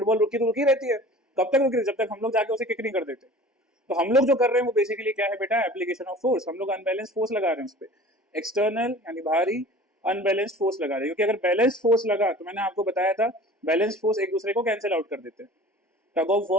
रुकी तो रुकी रहती है, कब तक रुकी, जब तक हम लोग जाके उसे किक नहीं कर देते। तो हम लोग जो कर रहे हैं वो बेसिकली क्या है बेटा, एप्लीकेशन ऑफ फोर्स, हम लोग अनबैलेंस फोर्स लगा रहे हैं उस पर, एक्सटर्नल यानी बाहरी अनबैलेंस्ड फोर्स लगा रहे हैं, क्योंकि अगर बैलेंस फोर्स लगा तो मैंने आपको बताया था बैलेंस फोर्स एक दूसरे को कैंसिल आउट कर देते हैं। टग ऑफ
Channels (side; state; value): both; normal; correlation 0.43